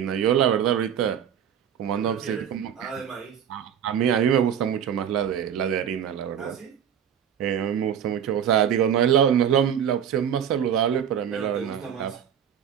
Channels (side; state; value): left; quieter; 8.9 dB